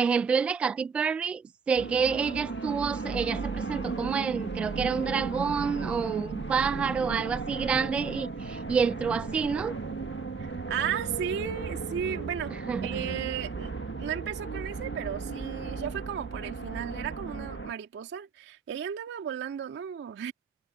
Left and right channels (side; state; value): left; quieter; 5.6 dB